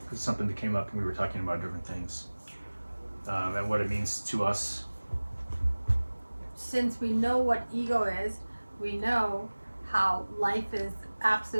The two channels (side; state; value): both; inverted; correlation -1.00